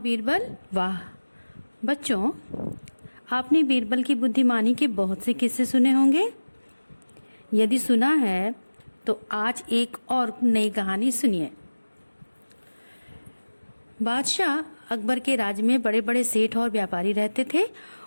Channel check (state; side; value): inverted; both; correlation -1.00